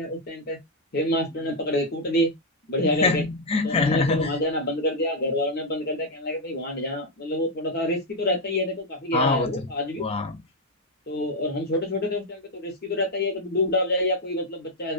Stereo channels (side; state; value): both; normal; correlation 0.01